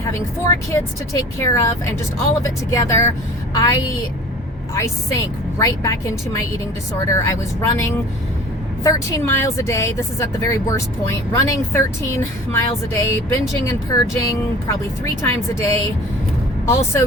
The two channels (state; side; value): normal; both; correlation 0.43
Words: 4 kids to take care of and just all of it together, I sank right back into my eating disorder. I was running 13 miles a day. This is at the very worst point. Running 13 miles a day, binging and purging probably 3 times a day. Also